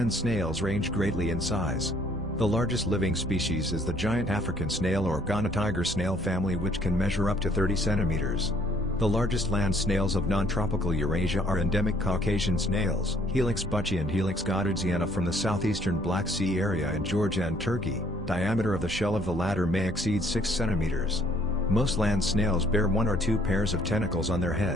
snails range greatly in size. The largest living species is the giant African snail or Ghana tiger snail family, which can measure up to 30 centimeters. The largest land snails of non-tropical Eurasia are endemic Caucasian snails, Helix bucci and Helix godardziana from the southeastern Black Sea area in Georgia and Turkey. Diameter of the shell of the latter may exceed 6 centimeters. Most land snails bear 1 or 2 pairs of tentacles on their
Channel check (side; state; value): both; normal; correlation 0.62